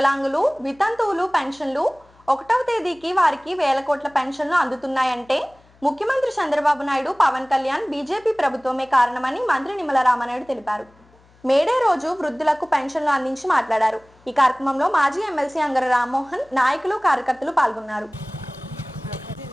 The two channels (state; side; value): noise; left; hum, 30 dB below the sound